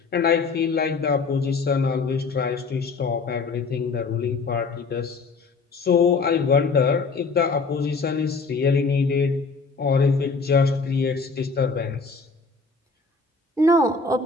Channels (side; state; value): right; quieter; 4.3 dB